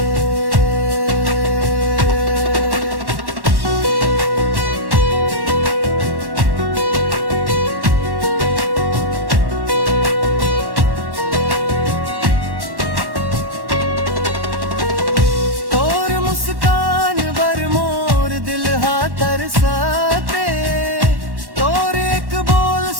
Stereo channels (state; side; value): late; left; 1.1 ms